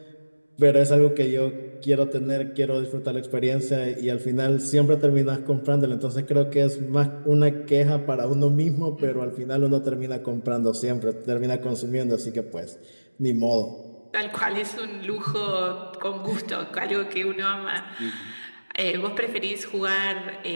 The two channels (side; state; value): both; inverted; correlation -1.00